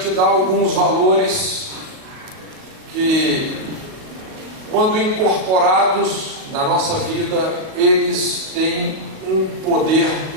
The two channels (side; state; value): left; late; 38 ms